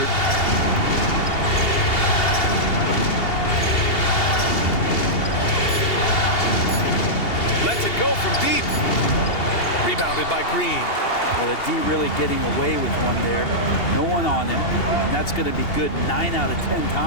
Lets it go from deep. Rebounded by Green. Well, the D really getting away with one there. No one on him. And that's going to be good 9 out of 10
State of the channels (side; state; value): right; late; 2.8 ms